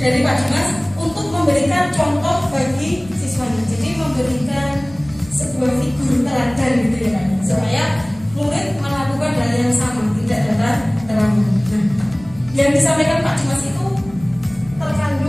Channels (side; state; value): right; noise; rumble, 20 dB below the sound